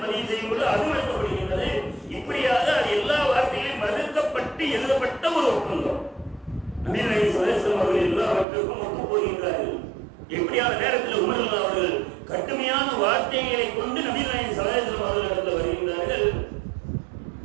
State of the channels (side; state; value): left; drops out; at 8.5 s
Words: பதிவு செய்யும் பொழுது அது மறுக்கப்படுகின்றது. இப்படியாக அது எல்லா வார்த்தைகளையும் மறுக்கப்பட்டு எழுதப்பட்ட ஒரு ஒப்பந்தம். நபி நாயகம் ஸல்லல்லாஹு அலைஹி வஸல்லம் அவர்கள் எல்லாவற்றுக்கும் ஒத்து போகின்றார்கள். எப்படியான நேரத்தில் உமர் அவர்கள் கடுமையான வார்த்தைகளை கொண்டு நபி நாயகம் ஸல்லல்லாஹு அலைஹி வஸல்லம் அவர்களிடத்தில் வருகின்றார்கள்.